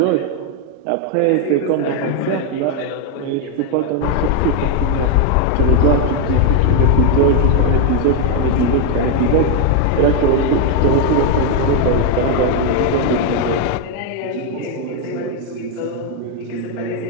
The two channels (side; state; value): both; different; correlation 0.01